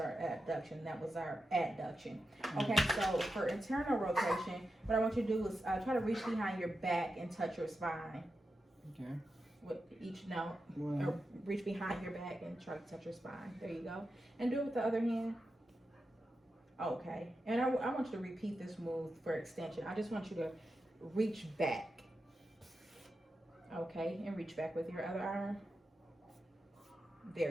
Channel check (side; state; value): both; normal; correlation 0.89